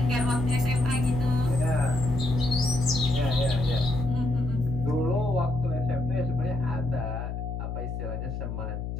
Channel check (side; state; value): left; noise; hum, 5 dB below the sound